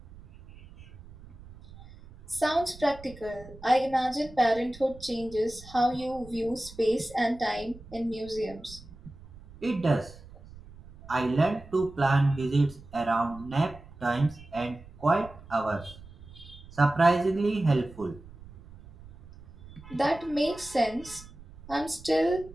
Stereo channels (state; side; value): noise; right; rumble, 19 dB below the sound